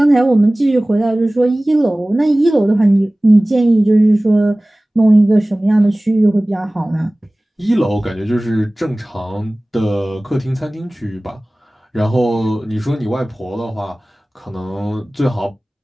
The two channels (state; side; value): normal; both; correlation 0.98